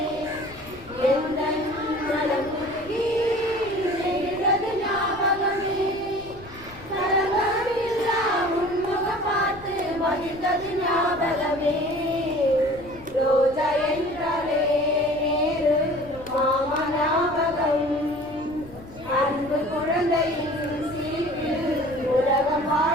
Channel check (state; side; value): noise; left; rumble, 20 dB below the sound